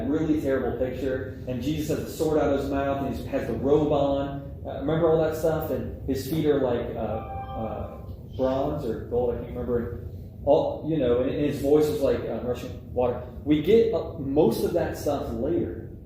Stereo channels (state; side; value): identical; both; correlation 1.00